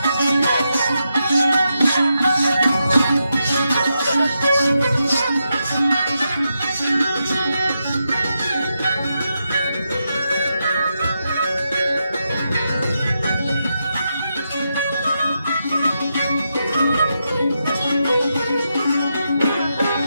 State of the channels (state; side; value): inverted; both; correlation -0.85